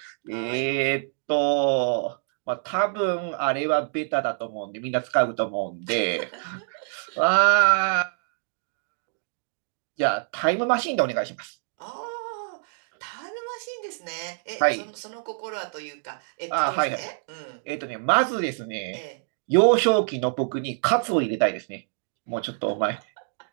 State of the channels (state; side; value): silent; left; digital silence